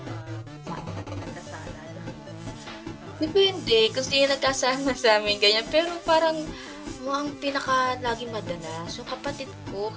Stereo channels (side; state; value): both; identical; correlation 1.00